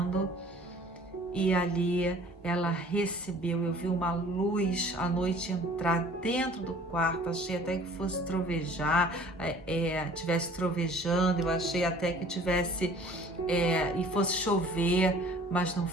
E ali ela recebeu, eu vi uma luz à noite entrar dentro do quarto, achei até que fosse trovejar, tivesse trovejando, eu achei até que tivesse, e fosse chover, mas não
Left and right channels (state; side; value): normal; both; correlation 0.51